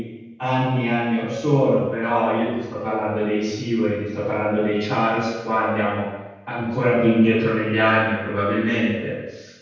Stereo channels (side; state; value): both; identical; correlation 1.00